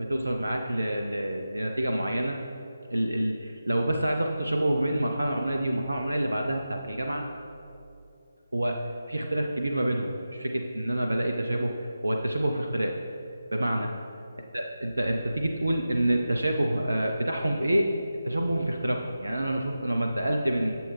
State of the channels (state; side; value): inverted; both; correlation -0.93